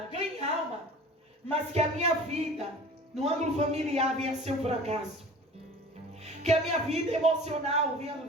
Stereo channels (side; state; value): both; normal; correlation 0.42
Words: ganhem alma. Mas que a minha vida, no ângulo familiar, venha a ser um fracasso. Que a minha vida emocional venha